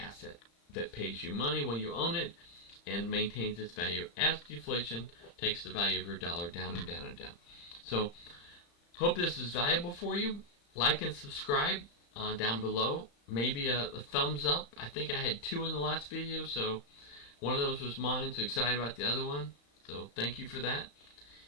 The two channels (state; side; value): late; right; 35 ms